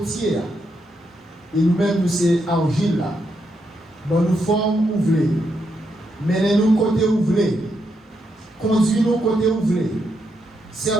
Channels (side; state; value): both; normal; correlation 0.81